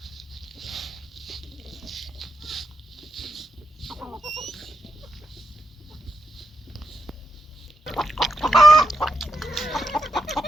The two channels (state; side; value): normal; both; correlation 0.83